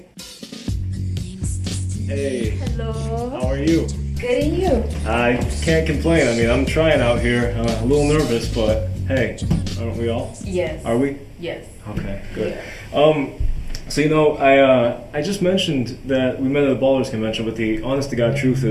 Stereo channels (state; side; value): identical; both; correlation 1.00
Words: Hey. Hello. How are you? Good, and you? I can't complain. I mean, I'm trying out here. I'm a little nervous, but hey, aren't we all? Yes. Are we? Yes. Okay, good. Yeah. So I just mentioned that we met at a ballers convention, but the honest to God truth